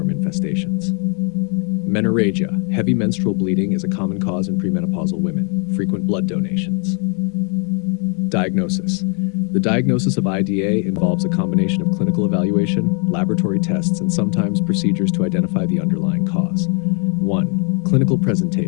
infestations. Menorrhagia. Heavy menstrual bleeding is a common cause in premenopausal women. Frequent blood donations. Diagnosis. The diagnosis of IDA involves a combination of clinical evaluation, laboratory tests, and sometimes procedures to identify the underlying cause. 1. Clinical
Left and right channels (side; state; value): right; quieter; 38.1 dB